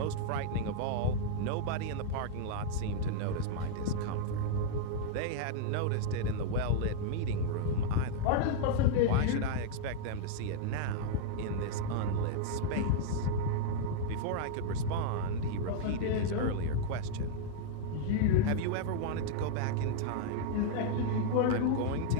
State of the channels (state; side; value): different; both; correlation -0.01